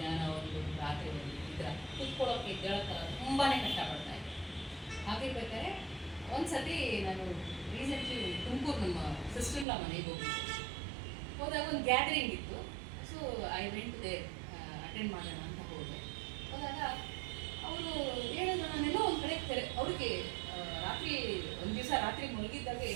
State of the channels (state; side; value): drops out; left; at 9.7 s